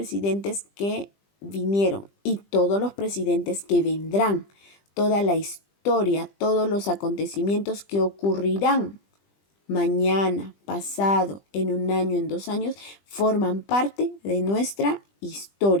que vinieron y todos los presidentes que vendrán, toda la historia, todos los acontecimientos que ocurrirán mañana, pasado, en un año, en 2 años, forman parte de nuestra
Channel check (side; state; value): right; late; 20 ms